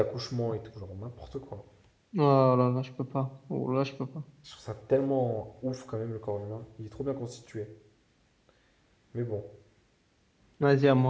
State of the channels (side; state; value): both; identical; correlation 1.00